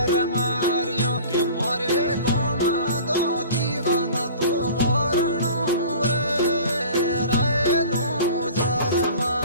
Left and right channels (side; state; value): both; inverted; correlation -0.42